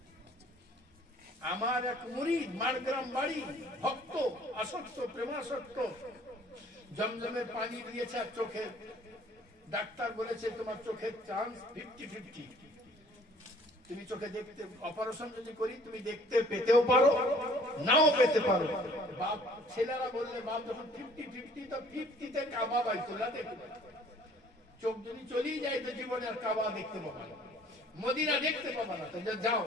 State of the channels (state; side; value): normal; both; correlation 0.55